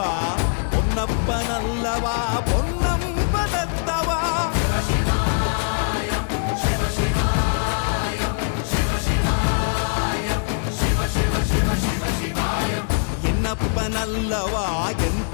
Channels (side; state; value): right; silent; digital silence